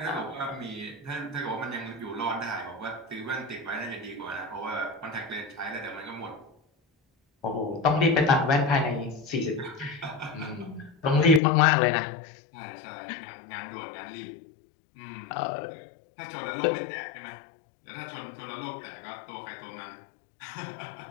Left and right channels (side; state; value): right; drops out; at 11.4 s